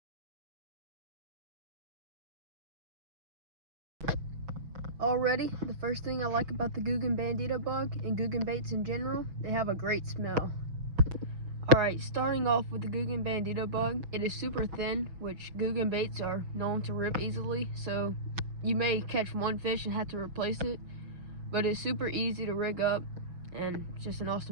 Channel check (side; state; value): left; late; 6.1 ms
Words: Already, the first thing I like about the Googan Bandito Bug and Googan baits in general, they have a great smell. Alright, starting off with the Googan Bandito Bug, it is super thin, which Googan baits are known to rip easily, so you may catch one fish and have to replace it, but it's super easy to rig up and it's just an